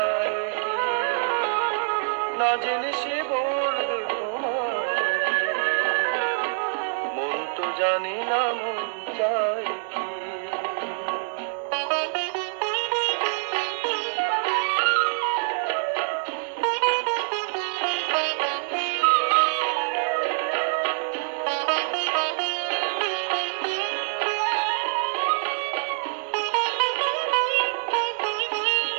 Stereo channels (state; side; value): silent; left; digital silence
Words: না জেনে সে বলবে তোমায় কি, মন তো জানি না মন চায় কি।